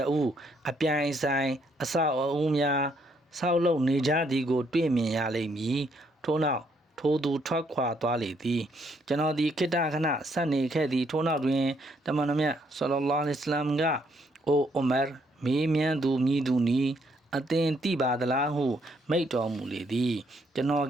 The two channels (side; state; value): both; normal; correlation 0.71